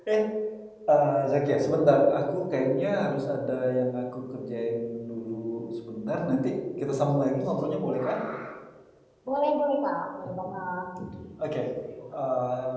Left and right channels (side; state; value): both; identical; correlation 1.00